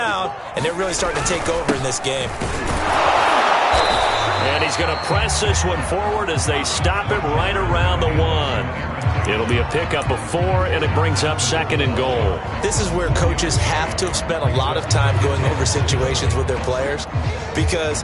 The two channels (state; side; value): identical; both; correlation 1.00